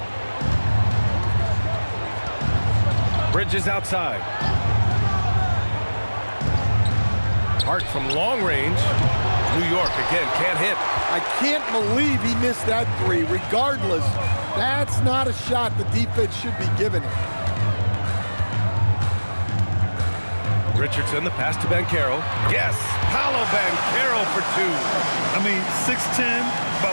Bridges outside. Hart from long range. New York again, can't hit. I can't believe he missed that 3. Regardless, That's not a shot the defense should be giving it. Richardson, the pass to Banchero. Yes, Paolo Banchero for two. I mean, 6'10",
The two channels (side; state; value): both; inverted; correlation -1.00